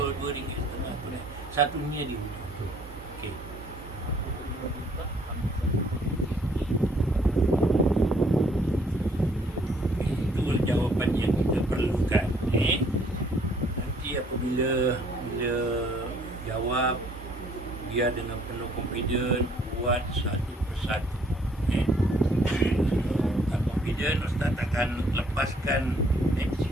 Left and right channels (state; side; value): normal; both; correlation 0.63